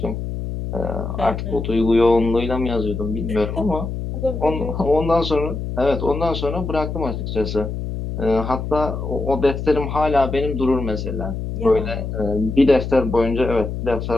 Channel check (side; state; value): left; noise; hum, 5 dB below the sound